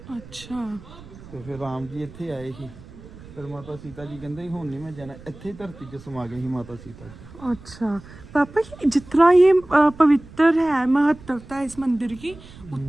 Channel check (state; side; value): noise; right; rumble, 19 dB below the sound